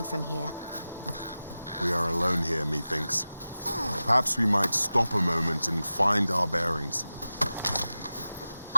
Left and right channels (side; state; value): both; inverted; correlation -0.95